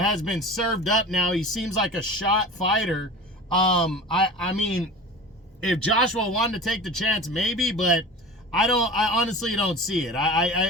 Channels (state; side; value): normal; both; correlation 0.36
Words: been served up now. He seems like a shot fighter. I mean, if Joshua wanted to take the chance, maybe, but I honestly don't see it.